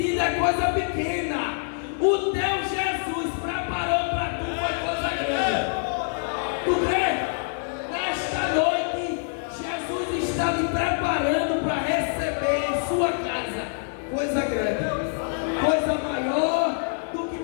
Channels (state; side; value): silent; right; digital silence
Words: é coisa pequena. O teu Jesus preparou para tu foi coisa grande. Tu crê? Nesta noite, Jesus está me preparando para receber em sua casa coisa grande, coisa maior do que